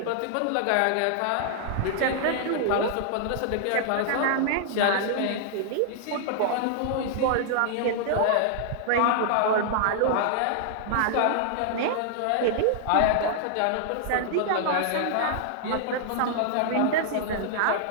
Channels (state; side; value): different; both; correlation -0.01